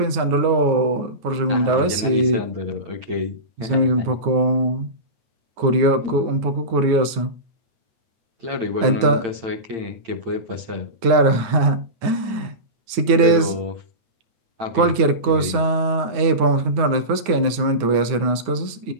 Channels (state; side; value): late; left; 9.5 ms